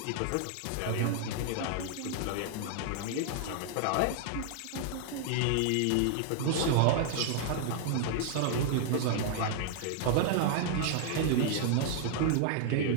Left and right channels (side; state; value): both; different; correlation 0.00